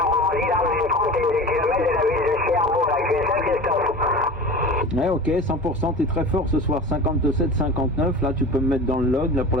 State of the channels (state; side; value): normal; both; correlation 0.34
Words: là, dans une trentaine de kilomètres de la ville de Cherbourg, la QSL Christophe. Ouais, ok, 100%, t'es très fort ce soir, 57-59, là tu peux me mettre dans le log, là pour